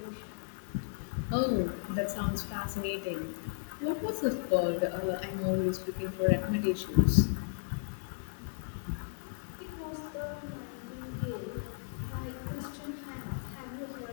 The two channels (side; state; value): right; silent; 55 dB below the other